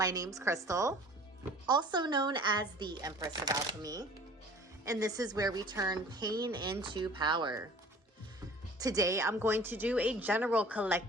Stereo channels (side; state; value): both; normal; correlation 0.47